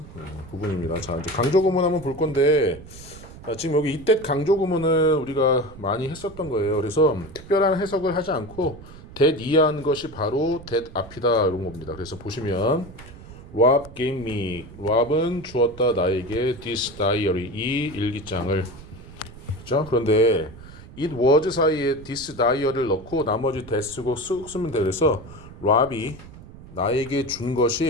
부분입니다. 자, 이제 강조 구문 한번 볼 건데 지금 여기 이때 강조 구문을 우리가 많이 했었던 거예요. 그래서 특별한 해석을 하지 않고 that 이해한 것이 바로 that 앞이다 이런 겁니다. 그래서 보시면 Rob gave me. Rob은 주었다 나에게 this diary 이 일기장을. 그렇죠? 그런데 it was 사이에 this diary를 넣고 나머지 that 쓰고 쓱 쓰면 돼. 그래서 Rob이 나에게 준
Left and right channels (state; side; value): noise; right; rumble, 17 dB below the sound